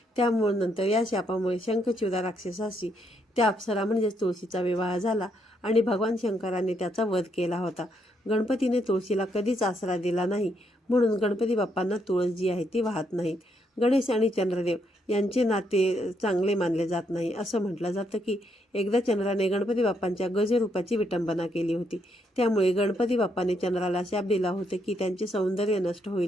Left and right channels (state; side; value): normal; both; correlation 0.76